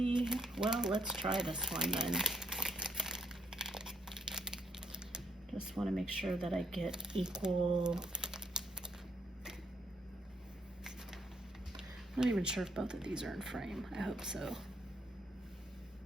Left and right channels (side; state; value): both; normal; correlation 0.72